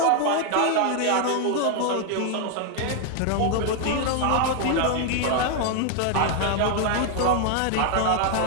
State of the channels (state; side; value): different; both; correlation 0.00